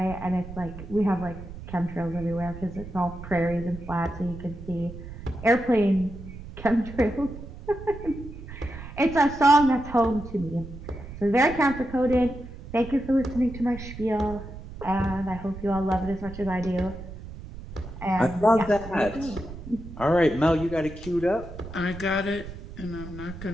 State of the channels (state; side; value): noise; right; rumble, 12 dB below the sound